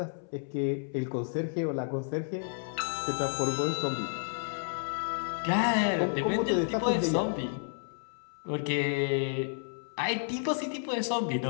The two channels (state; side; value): silent; right; 57 dB below the other